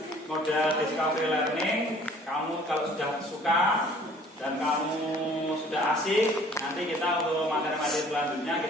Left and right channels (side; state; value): both; normal; correlation 0.54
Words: model discovery learning, kamu kalau sudah suka dan kamu sudah asik, nanti kita untuk materi-materi selanjutnya